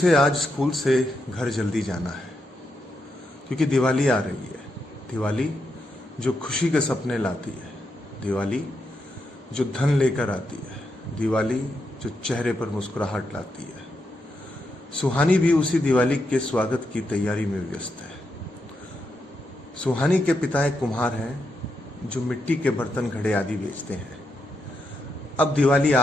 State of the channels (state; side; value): normal; both; correlation 0.83